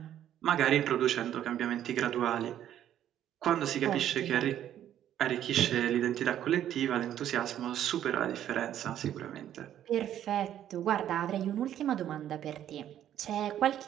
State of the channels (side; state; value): left; quieter; 11.1 dB